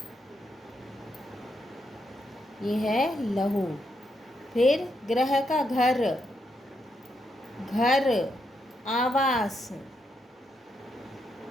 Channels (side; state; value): both; normal; correlation 0.80